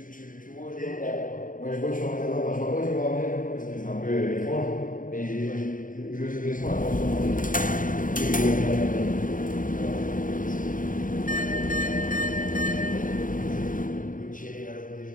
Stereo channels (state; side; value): late; right; 0.39 ms